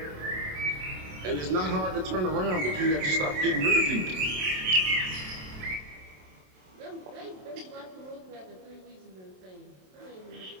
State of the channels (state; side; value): late; left; 27 ms